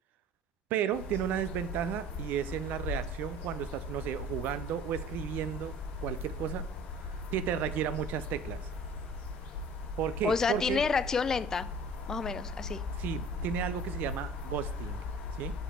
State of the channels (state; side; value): normal; both; correlation 0.45